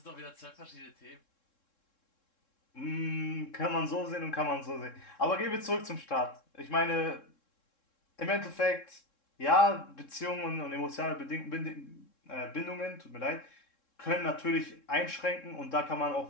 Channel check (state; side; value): late; right; 3.7 ms